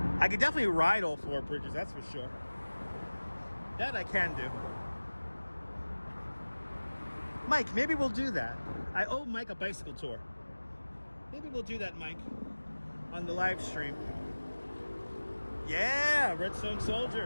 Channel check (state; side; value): inverted; both; correlation -1.00